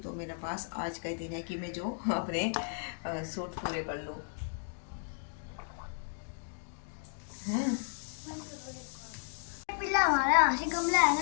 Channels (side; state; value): right; silent; 55 dB below the other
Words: मेरे पास आज का ही दिन है कि मैं जो अपने सूट पूरे कर लूँ। पिल्ला हमारा यहाँ से गमला है ना